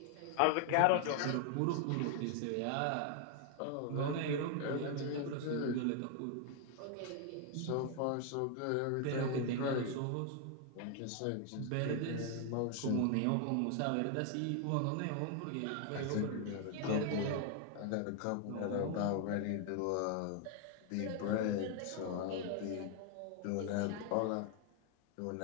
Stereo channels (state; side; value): different; both; correlation 0.00